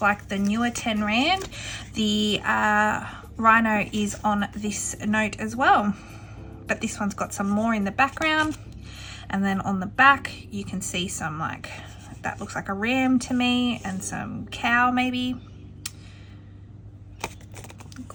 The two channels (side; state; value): both; identical; correlation 1.00